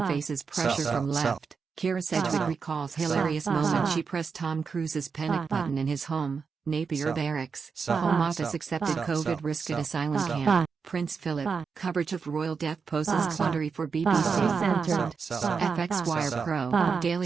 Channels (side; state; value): left; quieter; 5.4 dB